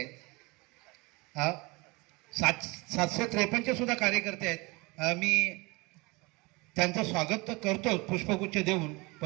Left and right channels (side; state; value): left; quieter; 25.2 dB